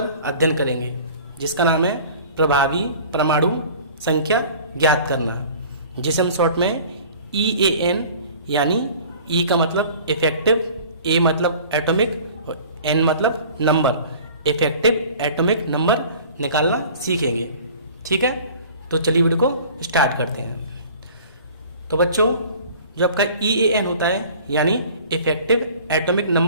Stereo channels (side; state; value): both; inverted; correlation -0.46